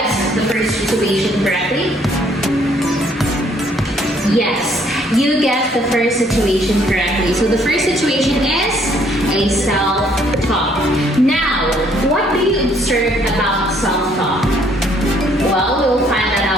the first situation correctly? Yes, you guessed the first situation correctly. So the first situation is a self-talk. Now, what do you observe about self-talk? Well, we'll find that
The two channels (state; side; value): normal; both; correlation 0.64